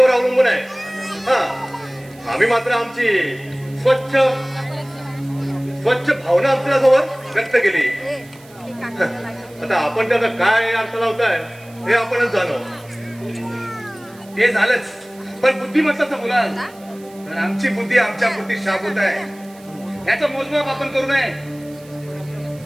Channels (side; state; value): right; noise; hiss, 25 dB below the sound